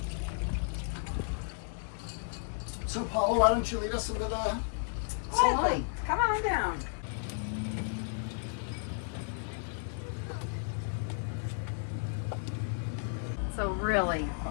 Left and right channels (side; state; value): right; silent; digital silence